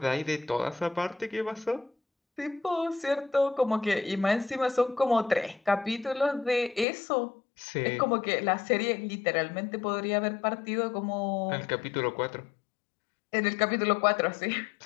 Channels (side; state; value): right; drops out; at 6.9 s